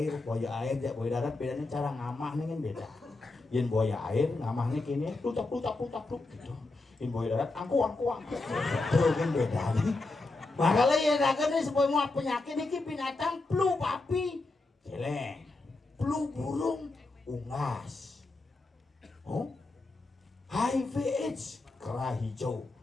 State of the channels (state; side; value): quieter; right; 3.3 dB